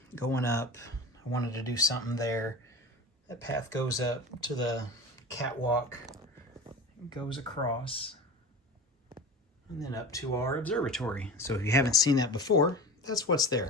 going up. I wanted to do something there. That path goes up to the catwalk, goes across, and then up to our observatory. So if you haven't seen that before, that's what's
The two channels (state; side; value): normal; both; correlation 0.32